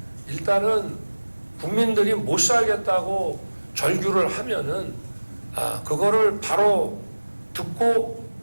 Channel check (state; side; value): inverted; both; correlation -1.00